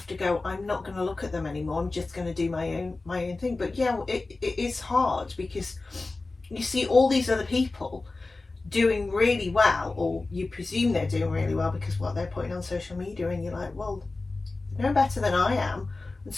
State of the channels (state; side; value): quieter; right; 3.4 dB